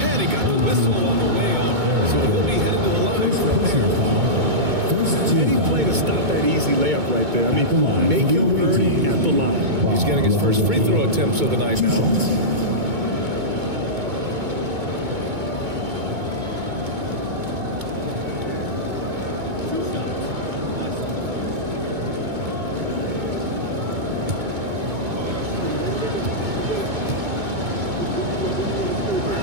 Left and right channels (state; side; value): late; left; 2.2 ms